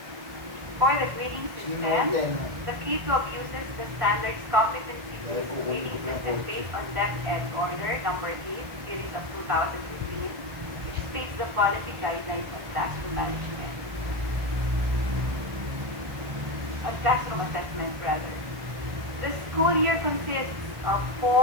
For the grading system, the K-12 uses the standards competency-based grading system based on DepEd Order number 8, series of 2015, which states the policy guidelines on classroom management. On classroom assessment, rather. The school year consists of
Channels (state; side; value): late; left; 1.5 ms